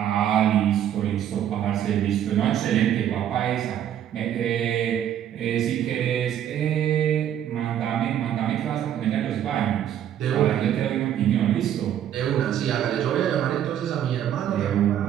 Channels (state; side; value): quieter; left; 10.4 dB